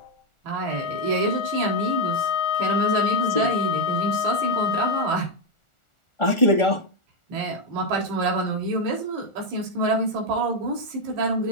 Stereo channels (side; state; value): right; late; 1.4 ms